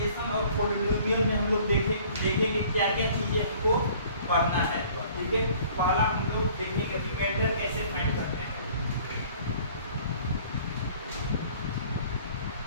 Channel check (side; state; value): both; inverted; correlation -0.53